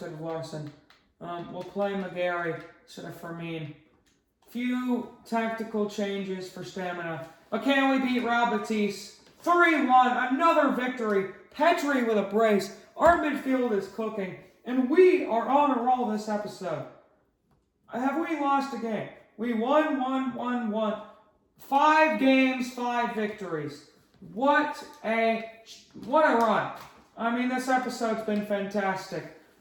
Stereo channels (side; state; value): both; identical; correlation 1.00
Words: of Larson. We'll play McGarry instead of Fermin. Few tactical changes for stamina. But can we beat Real Betis? 3-1, another victory. Petri with a brace. Our midfield is cooking. And we are on a roll this episode. Have we lost a game? We won. 5 games, 5 victories. What a run. I mean, this episode's been fantastic.